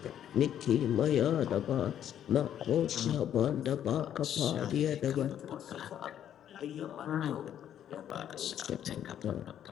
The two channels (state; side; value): quieter; right; 10.2 dB